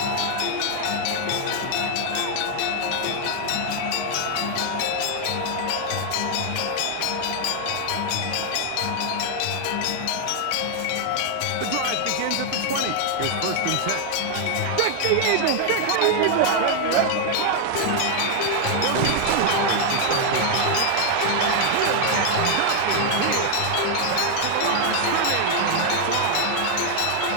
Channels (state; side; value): different; both; correlation 0.00